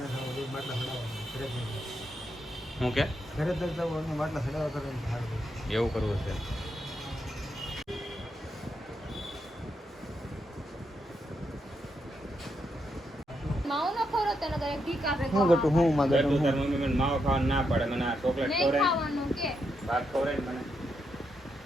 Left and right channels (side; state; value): both; normal; correlation 0.82